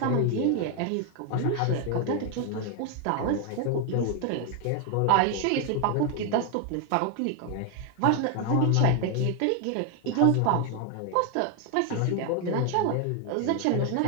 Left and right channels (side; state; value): both; different; correlation 0.01